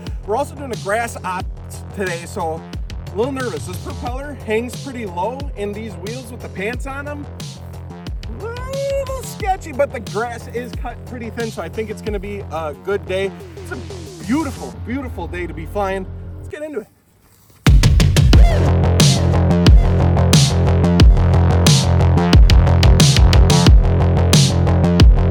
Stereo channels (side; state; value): both; identical; correlation 1.00